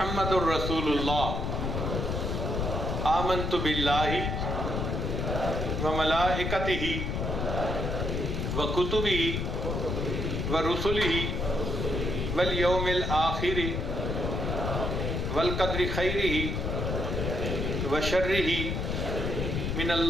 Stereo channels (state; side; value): noise; left; rumble, 1 dB below the sound